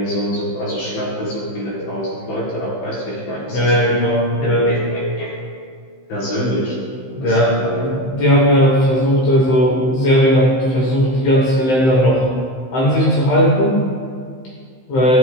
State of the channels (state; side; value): late; right; 15 ms